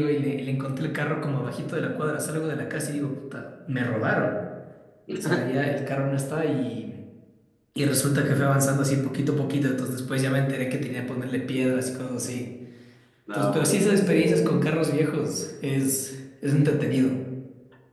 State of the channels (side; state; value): both; identical; correlation 1.00